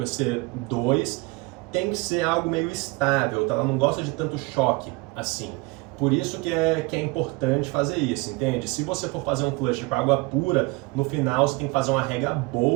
EC2, tem que ser algo meio estável, tá? Ela não gosta de tanto choque assim. Por isso que é importante fazer isso, entende? Se você for fazer um flush com água pura, no final você tem que fazer uma rega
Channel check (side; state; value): left; quieter; 25.5 dB